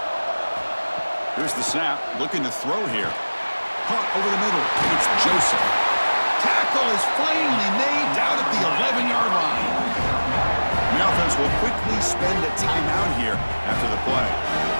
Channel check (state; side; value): inverted; both; correlation -1.00